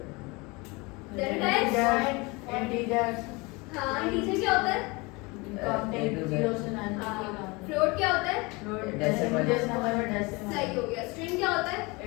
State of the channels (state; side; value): quieter; right; 25.8 dB